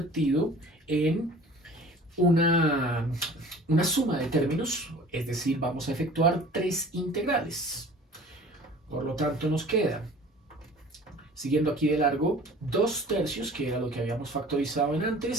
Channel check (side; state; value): both; normal; correlation 0.45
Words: en una suma de términos, es decir, vamos a efectuar 3 integrales. Por lo tanto, nos queda, siguiendo aquí de largo, 2/3, que era lo que habíamos factorizado en